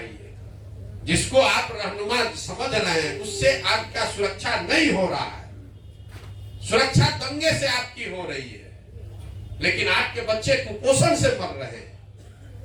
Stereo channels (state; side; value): identical; both; correlation 1.00